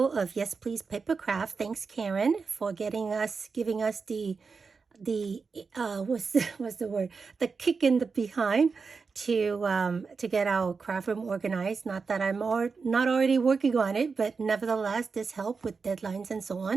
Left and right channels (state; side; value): quieter; left; 4.9 dB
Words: of Yes Please Papercraft. Thanks, Karen, for giving us the what's the word, the kick in the behind to get our craft room organized. Not that I'm not already working on it, but nevertheless this helped with deadlines and so